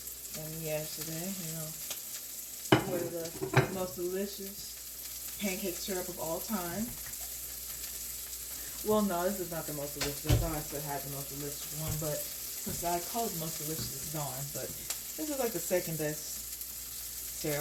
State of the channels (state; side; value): identical; both; correlation 1.00